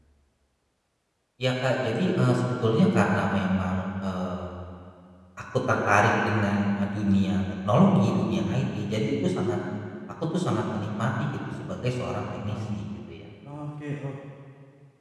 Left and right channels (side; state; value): both; identical; correlation 1.00